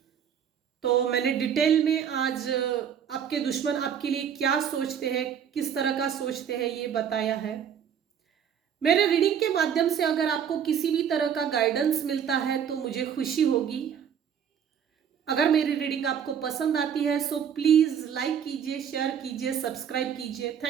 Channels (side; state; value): left; quieter; 8.3 dB